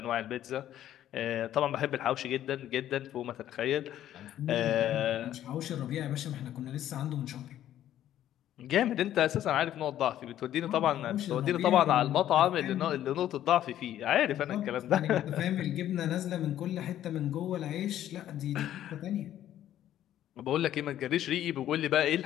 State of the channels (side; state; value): right; quieter; 11.9 dB